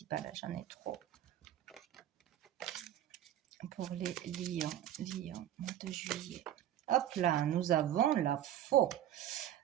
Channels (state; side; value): quieter; left; 11.7 dB